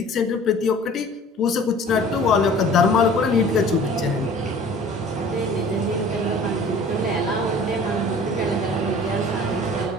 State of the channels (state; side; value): normal; both; correlation 0.47